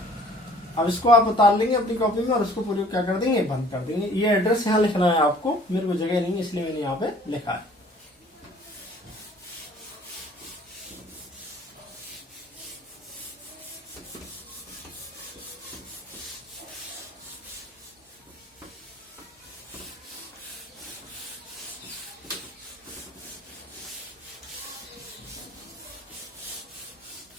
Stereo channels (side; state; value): both; normal; correlation 0.53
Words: अब इसको आप उतार लेंगे अपनी कॉपी में और उसको पूरी क्या कर देंगे, बंद कर देंगे। ये एड्रेस यहाँ लिखना है आपको, मेरे को जगह नहीं इसलिए मैंने यहाँ पे लिखा है।